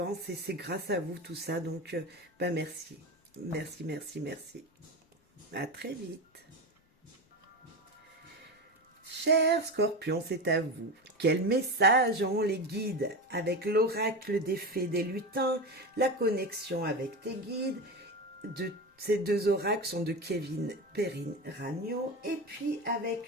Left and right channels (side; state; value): both; normal; correlation 0.21